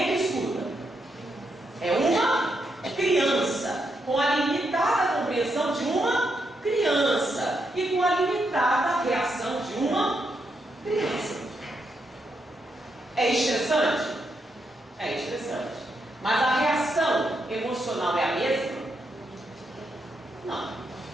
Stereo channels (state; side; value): normal; both; correlation 0.81